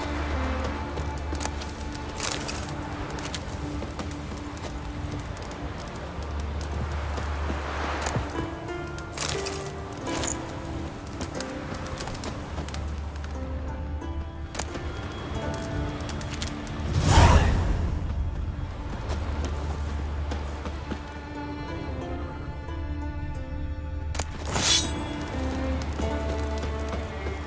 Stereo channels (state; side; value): identical; both; correlation 1.00